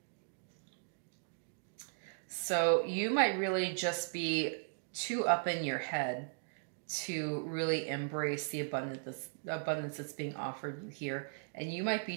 So you might really just be too up in your head to really embrace the abundance that's being offered you here. And you might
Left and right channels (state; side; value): silent; left; digital silence